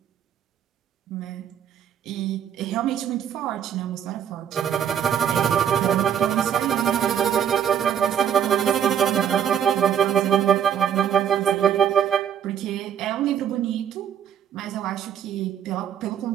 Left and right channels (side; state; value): left; quieter; 8.9 dB